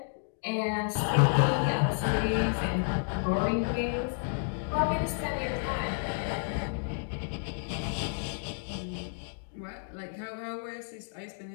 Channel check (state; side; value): silent; right; 57 dB below the other